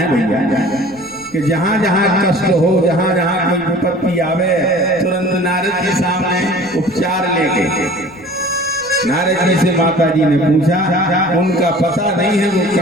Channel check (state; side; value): noise; left; rumble, 25 dB below the sound